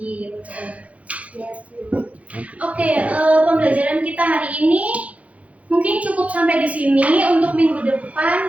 Oke, pembelajaran kita hari ini mungkin cukup sampai di sini. Untuk minggu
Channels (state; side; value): late; left; 0.066 ms